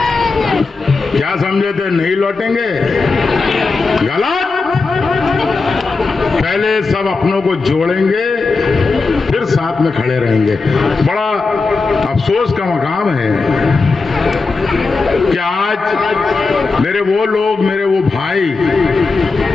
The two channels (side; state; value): right; quieter; 4.1 dB